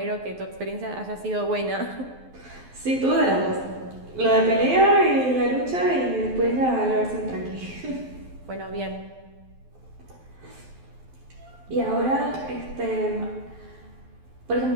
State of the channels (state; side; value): late; left; 12 ms